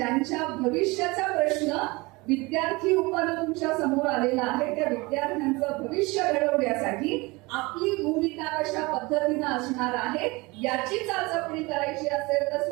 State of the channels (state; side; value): quieter; left; 24.1 dB